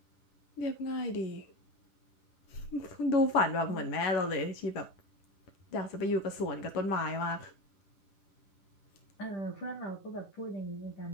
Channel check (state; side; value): late; right; 10 ms